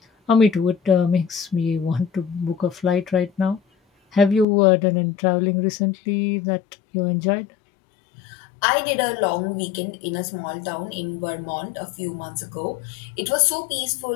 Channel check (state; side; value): drops out; right; at 4.5 s